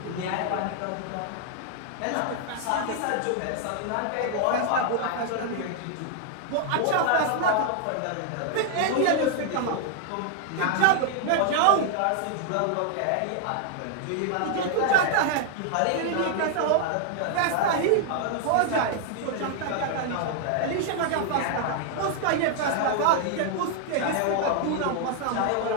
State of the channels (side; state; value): both; different; correlation 0.00